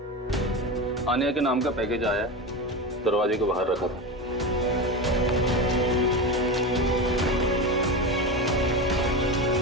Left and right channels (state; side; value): normal; both; correlation 0.21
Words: आन्या के नाम का पैकेज आया, दरवाजे के बाहर रखा था।